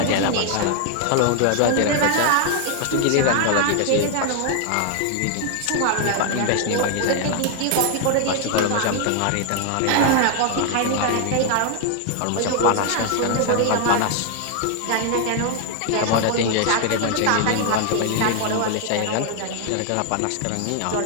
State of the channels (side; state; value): both; different; correlation 0.00